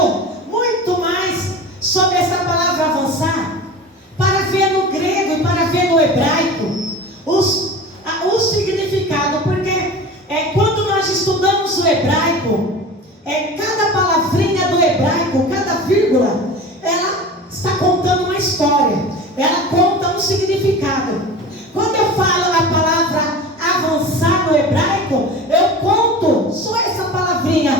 muito mais sobre essa palavra avançar, para ver no grego e para ver no hebraico o significado, porque quando nós estudamos o hebraico, cada palavrinha do hebraico, cada vírgula, ela está contando uma história, ela conta um significado. Quando eu falo a palavra avançar no hebraico, eu conto só essa palavrinha,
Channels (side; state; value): both; normal; correlation 0.34